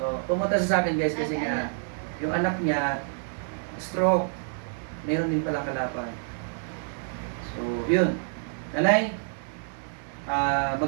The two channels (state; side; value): silent; left; digital silence